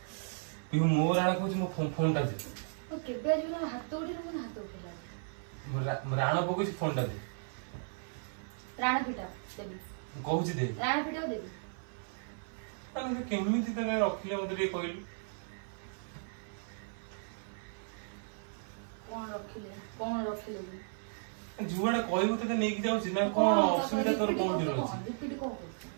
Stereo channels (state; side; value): silent; left; 54 dB below the other